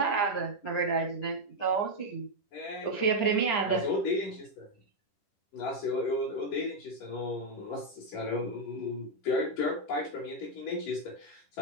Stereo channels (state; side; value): late; right; 9.9 ms